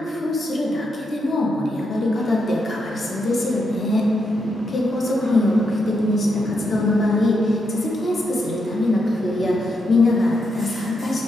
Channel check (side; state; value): both; normal; correlation 0.82